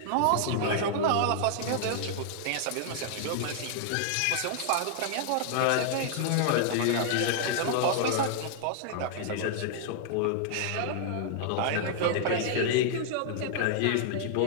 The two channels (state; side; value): different; both; correlation -0.01